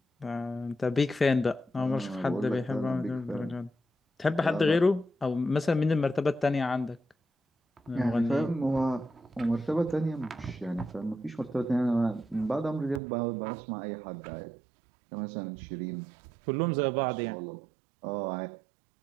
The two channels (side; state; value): left; drops out; at 13.0 s